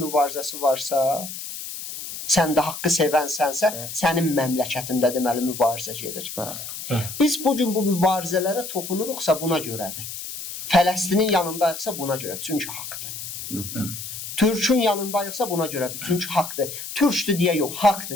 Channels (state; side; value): noise; left; hiss, 9 dB below the sound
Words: varsa, sən də haqqı sevənsənsə, sənin məmləkətində deməli mübarizə gedir. Biz bugün bu mübarizələrə toxunuruqsa buna görədir. Fələstinin yanındayıqsa buna görə, çünki haqdır. Türkün yanındayıqsa buna görədir, çünki haqdır. Türkdür deyə yox,